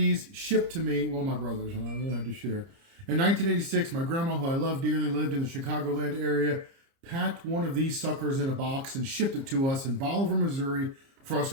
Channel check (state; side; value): late; left; 30 ms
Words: shipped to me, well, my brothers and I really had to share. In 1986, my grandma, who I love dearly, lived in the Chicagoland area, packed one of these suckers in a box and shipped it to us in Bolivar, Missouri, for us